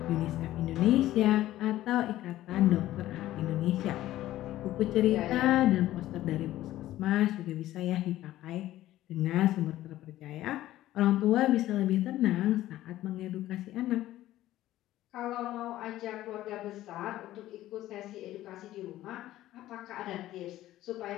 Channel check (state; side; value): quieter; right; 14.6 dB